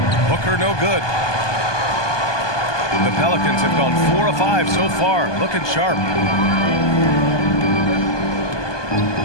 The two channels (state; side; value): late; right; 1.2 ms